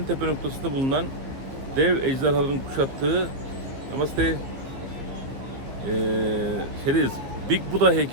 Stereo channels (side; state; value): left; late; 15 ms